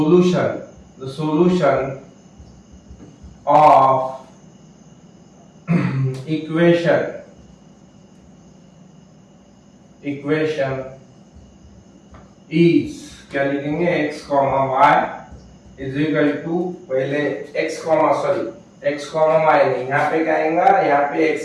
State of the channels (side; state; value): both; identical; correlation 1.00